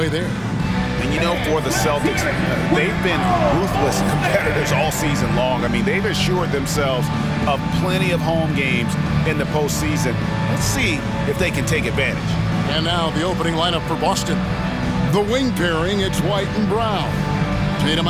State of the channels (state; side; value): identical; both; correlation 1.00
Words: there. And, you know, for the Celtics, they've been ruthless competitors all season long. I mean, they've assured themselves of plenty of home games in the postseason. Let's see if they can take advantage. And now the opening lineup for Boston. The wing pairing, it's White and Brown. Tatum